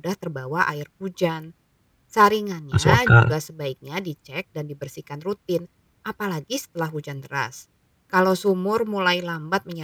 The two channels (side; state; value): both; identical; correlation 1.00